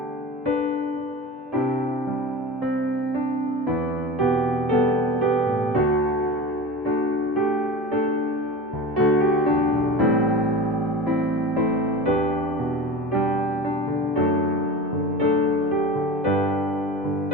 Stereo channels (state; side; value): normal; both; correlation 0.31